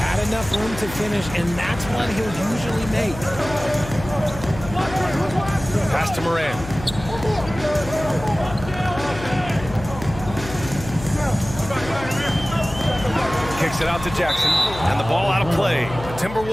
enough room to finish, and that's one he'll usually make. Pass to Moran. Kicks it out to Jackson, and the ball out of play. The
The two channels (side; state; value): left; noise; hum, 12 dB below the sound